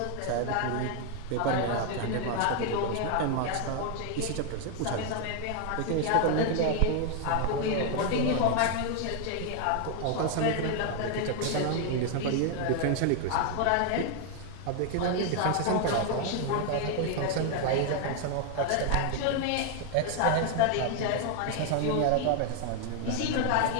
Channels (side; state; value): both; different; correlation 0.00